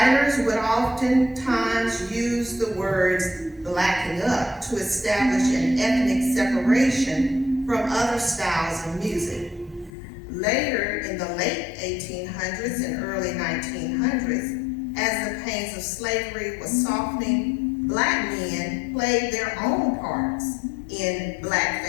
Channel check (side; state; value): right; drops out; at 9.9 s